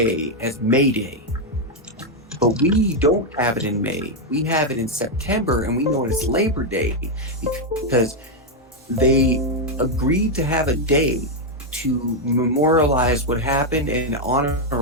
as May Day. But we don't have it in May. We have it in September, and we know it as Labor Day because they agreed to have a day to memorialize what happened and honor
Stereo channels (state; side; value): normal; both; correlation 0.01